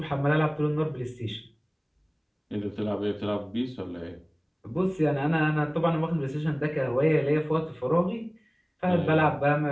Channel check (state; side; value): identical; both; correlation 1.00